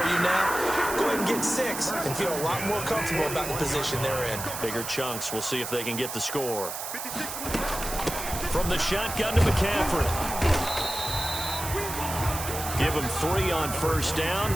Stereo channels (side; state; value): right; noise; hiss, 7 dB below the sound